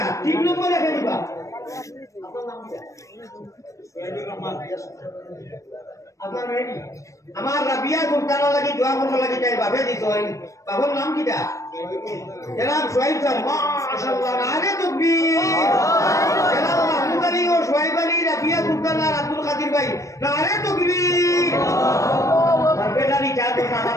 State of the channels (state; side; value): late; right; 0.15 ms